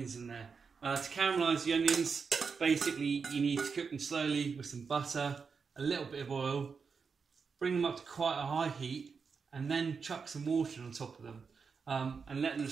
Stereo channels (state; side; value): quieter; left; 5.5 dB